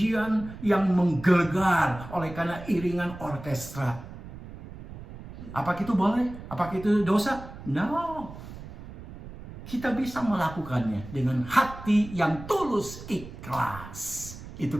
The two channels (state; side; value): noise; right; rumble, 14 dB below the sound